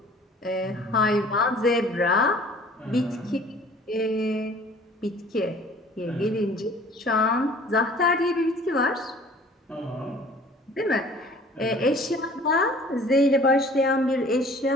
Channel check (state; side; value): normal; both; correlation 0.50